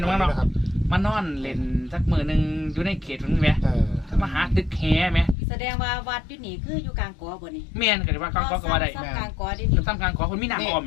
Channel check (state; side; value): drops out; right; at 5.4 s